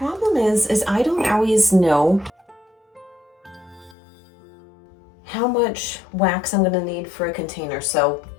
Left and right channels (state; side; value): drops out; right; at 4.0 s